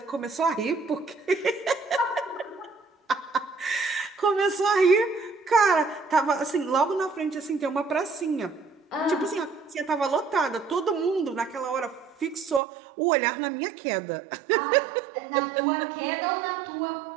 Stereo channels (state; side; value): drops out; left; at 12.6 s